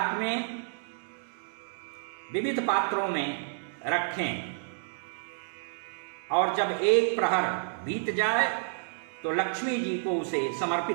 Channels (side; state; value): left; silent; digital silence